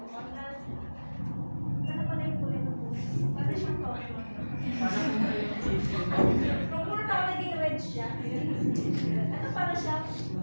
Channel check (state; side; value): inverted; both; correlation -1.00